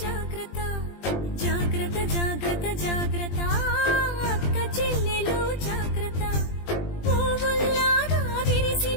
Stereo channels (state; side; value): late; right; 20 ms